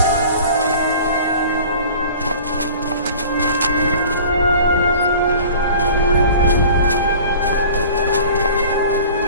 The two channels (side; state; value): both; inverted; correlation -0.43